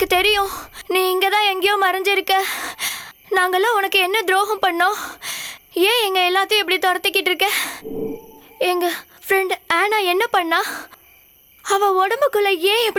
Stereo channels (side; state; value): both; identical; correlation 1.00